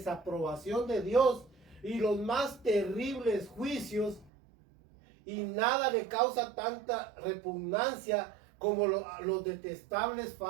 de Dios y los más terribles juicios, y nada le causa tanta repugnancia como los detestables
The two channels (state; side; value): drops out; left; at 4.3 s